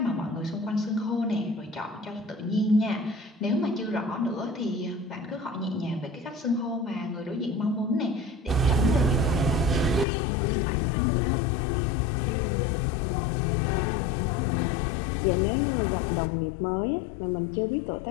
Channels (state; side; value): drops out; right; at 10.1 s